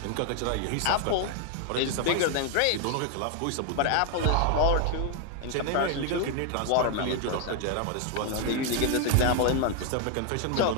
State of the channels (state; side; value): different; both; correlation 0.00